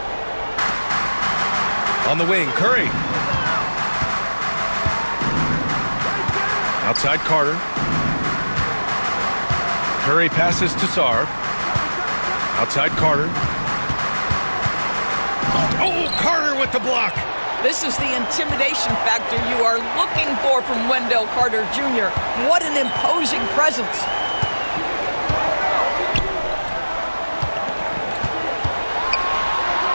On the wing, Curry. Outside Carter. Curry passes to Sarr. Outside Carter. Oh, Carter with the block. This is the intimidation factor you are looking for from Wendell Carter Jr. What an imposing presence.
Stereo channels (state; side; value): inverted; both; correlation -1.00